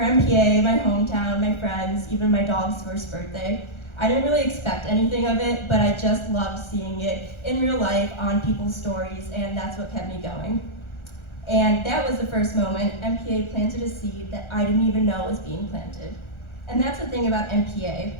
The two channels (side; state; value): right; late; 1.4 ms